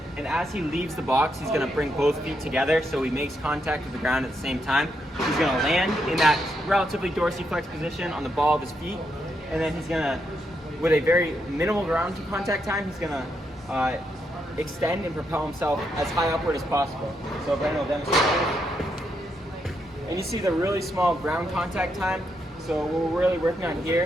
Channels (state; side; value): normal; both; correlation 0.80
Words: and as he leaves the box, he's going to bring both feet together so he makes contact with the ground at the same time. He's going to land in that relatively dorsiflex position on the ball of his feet, and then he's going to, with a very minimal ground contact time, he's going to extend and propel himself as high upward as possible. So Brandon will demonstrate that. And you see the really small ground contact time. So what we're really working on